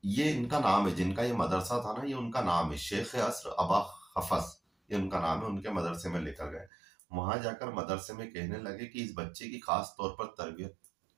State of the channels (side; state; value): left; drops out; at 6.7 s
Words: ये इनका नाम है, जिनका ये मदरसा था ना, ये उनका नाम है, शेख असर अबा खफस, ये उनका नाम है। उनके मदरसे में लेकर गए। वहां जाकर मदरसे में कहने लगे कि इस बच्चे की खास तौर पर तरबियत